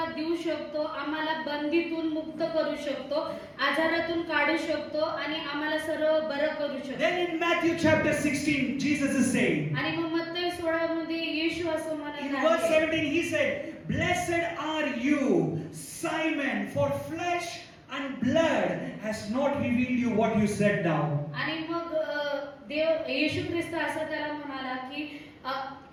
देऊ शकतो, आम्हाला बंदीतून मुक्त करू शकतो, आजारातून काढू शकतो आणि आम्हाला सर्व बरं करू शकतो. Then in Matthew chapter 16, Jesus is saying, आणि मग मत्तई 16 मध्ये येशू असं in म्हणत verse आहे, 17, he said, blessed are you, Simon, for flesh and blood has not revealed you what you said now. आणि मग येशू ख्रिस्त असं त्याला म्हणाला की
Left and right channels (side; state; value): both; identical; correlation 1.00